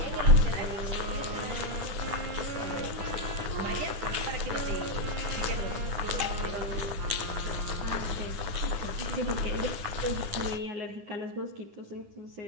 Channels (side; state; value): left; late; 9.9 ms